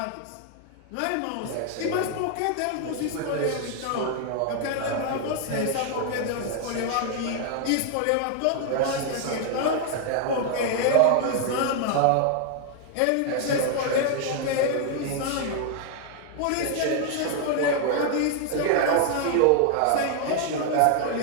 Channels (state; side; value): different; both; correlation 0.00